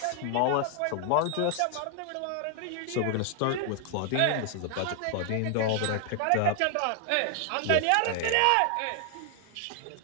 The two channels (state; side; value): different; both; correlation 0.00